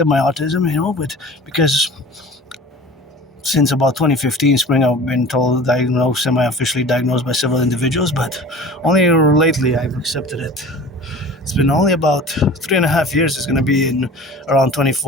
my autism, you know, but because since about 2015 spring, I've been semi-officially diagnosed by several individuals, but only lately I've accepted it. It's been only about 3.5 years. It's going to be in around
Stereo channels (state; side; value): normal; both; correlation 0.41